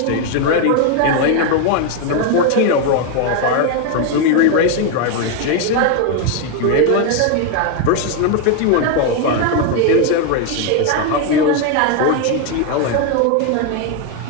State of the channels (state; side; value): different; both; correlation 0.01